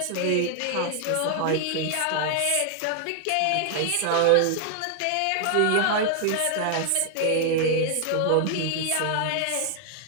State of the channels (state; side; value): different; both; correlation 0.00